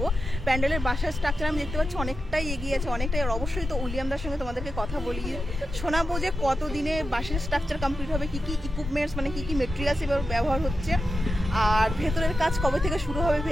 প্যান্ডেলের বাসার স্ট্রাকচার আমি দেখতে পাচ্ছি অনেকটাই এগিয়ে আছে, অনেকটাই। আর অবশ্যই তো উলিয়ামদার সঙ্গে তোমাদেরকে কথা বলি, শোনাবো যে কতদিনে বাসের স্ট্রাকচার কমপ্লিট হবে, কী কী ইকুইপমেন্টস মানে কী কী মেটেরিয়ালস এবার ব্যবহার হচ্ছে, আর ভেতরের কাজ কবে থেকে শুরু হবে,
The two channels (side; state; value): both; normal; correlation 0.90